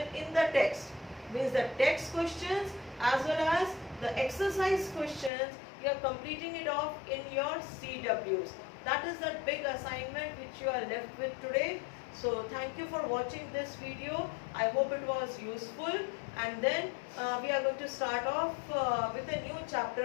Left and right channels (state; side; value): drops out; right; at 5.3 s